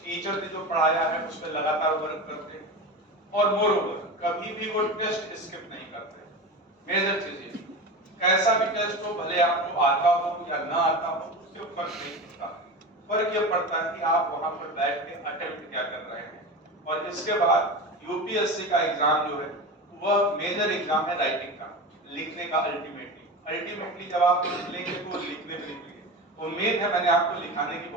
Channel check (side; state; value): both; normal; correlation 0.27